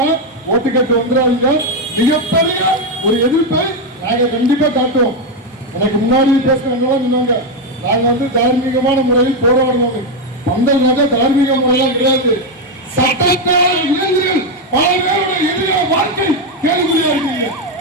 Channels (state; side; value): normal; both; correlation 0.06